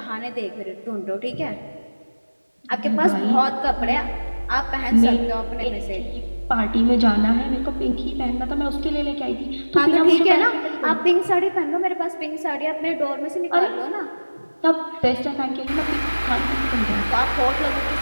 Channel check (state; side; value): inverted; both; correlation -1.00